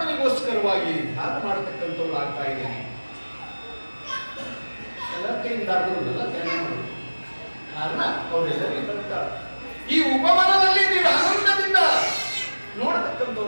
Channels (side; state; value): both; inverted; correlation -1.00